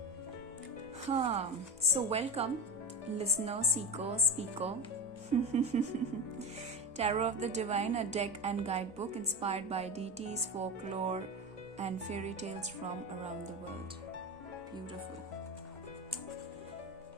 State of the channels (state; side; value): normal; both; correlation 0.24